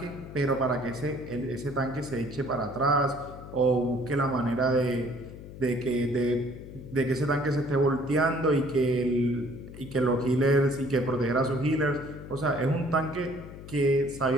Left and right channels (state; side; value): noise; left; hum, 14 dB below the sound